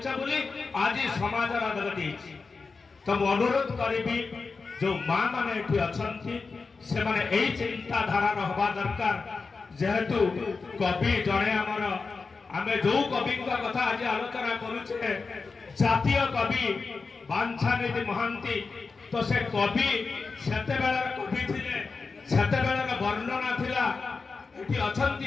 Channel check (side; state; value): right; quieter; 4.4 dB